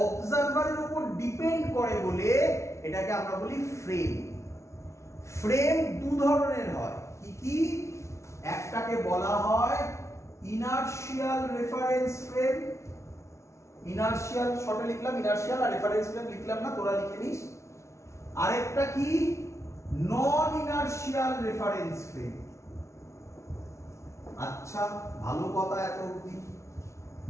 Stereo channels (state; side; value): late; right; 0.14 ms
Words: অবজারভারের উপর ডিপেন্ড করে বলে এটাকে আমরা বলি ফ্রেম। ফ্রেম দু ধরনের হয়, কি কি? একটাকে বলা হয় ইনার্শিয়াল রেফারেন্স ফ্রেম। ইনার্শিয়াল শর্টে লিখলাম ইনার্শিয়াল, আর রেফারেন্স ফ্রেম লিখলাম না, তোরা লিখে নিস। আরেকটা কি? নন ইনার্শিয়াল রেফারেন্স ফ্রেম। আচ্ছা, ভালো কথা এত অবধি।